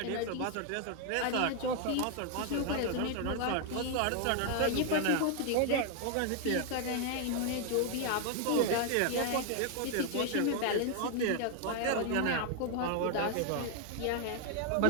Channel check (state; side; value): different; both; correlation 0.00